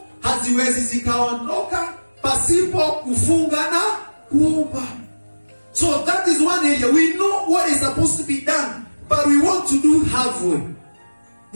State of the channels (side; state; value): both; inverted; correlation -1.00